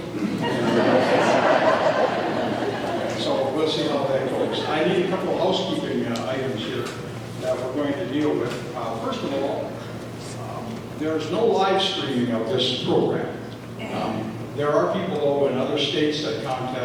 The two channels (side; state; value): both; identical; correlation 1.00